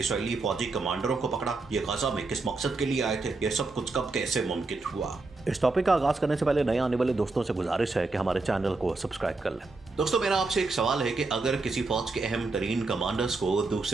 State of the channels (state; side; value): quieter; left; 3.6 dB